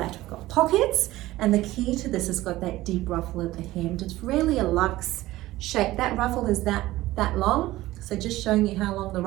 We've got pockets, and the key to this has got that deep ruffle at the hem. It's really a luxe shape. That ruffle is that long. So just showing you how long the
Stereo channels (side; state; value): left; quieter; 16.9 dB